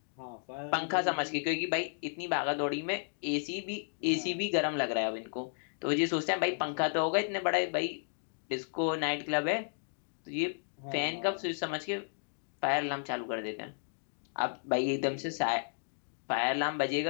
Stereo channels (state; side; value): silent; right; digital silence